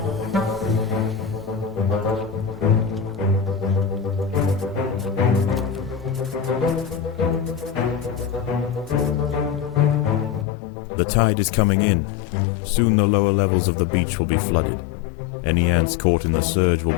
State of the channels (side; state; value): right; drops out; at 10.5 s